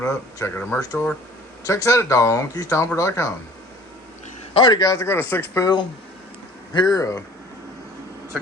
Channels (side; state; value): both; normal; correlation 0.48